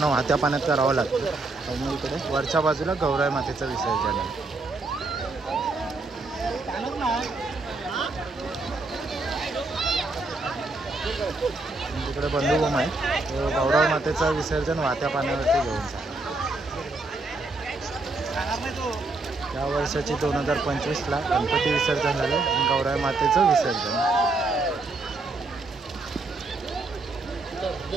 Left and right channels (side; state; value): left; quieter; 3.3 dB